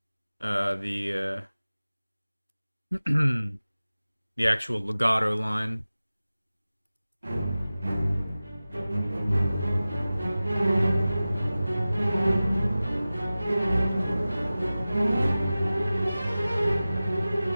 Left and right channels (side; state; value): both; inverted; correlation -0.97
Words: the the actual legato line.